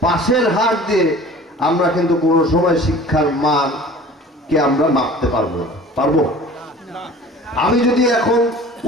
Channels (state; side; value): normal; both; correlation 0.44